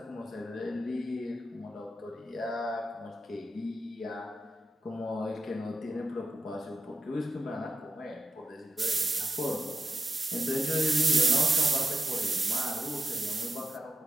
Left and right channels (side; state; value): both; normal; correlation 0.91